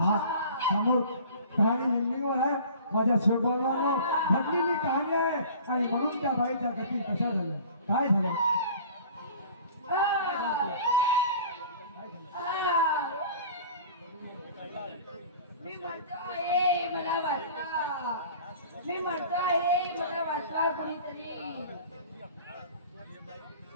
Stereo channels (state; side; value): inverted; both; correlation -0.44